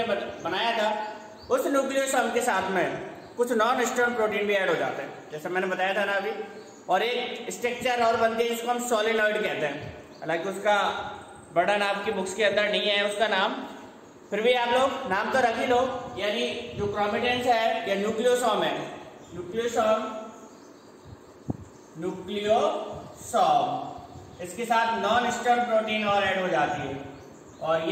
बनाया था, उस न्यूक्लियोसोम के साथ में कुछ नॉन हिस्टोन प्रोटीन भी ऐड हो जाते हैं, जैसे मैंने बताया था ना अभी। और एक स्ट्रक्चर और बनती है जिसको हम सोलेनॉइड कहते हैं, हालांकि उसका वर्णन आपकी बुक्स के अंदर नहीं है उसका नाम, फिर भी आप लोग नाम तो रख ही लो। यानी जो क्रोमेटिन्स है या न्यूक्लियोसोम है, न्यूक्लियोसोम इसके साथ नॉन हिस्टोन प्रोटीन और ऐड हो जाती है और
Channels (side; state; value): both; identical; correlation 1.00